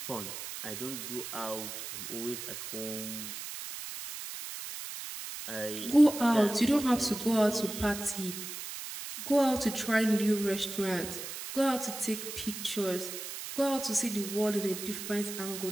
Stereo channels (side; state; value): right; noise; hiss, 8 dB below the sound